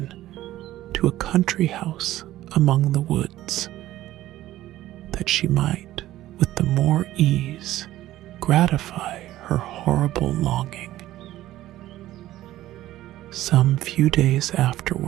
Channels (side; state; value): left; quieter; 14.7 dB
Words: to a country house among the woods, that she might, with the more ease, gratify her horrible longing. Some few days